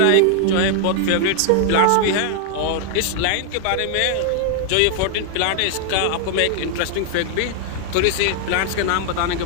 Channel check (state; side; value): different; both; correlation 0.00